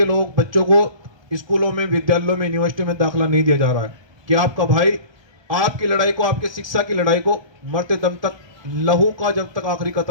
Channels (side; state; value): left; late; 1.3 ms